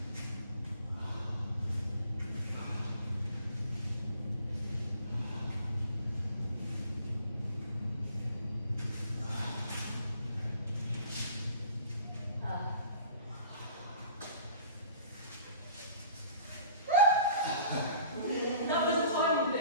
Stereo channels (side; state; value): both; inverted; correlation -0.48